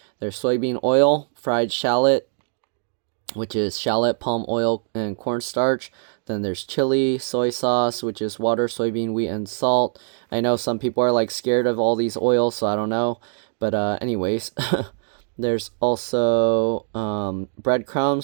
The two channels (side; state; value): left; silent; digital silence